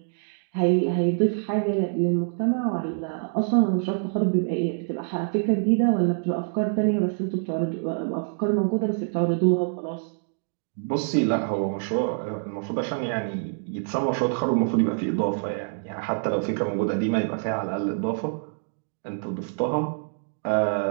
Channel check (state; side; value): silent; left; digital silence